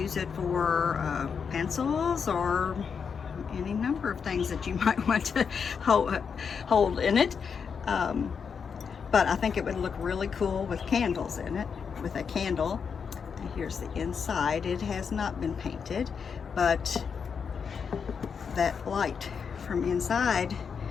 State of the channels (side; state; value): right; quieter; 6.3 dB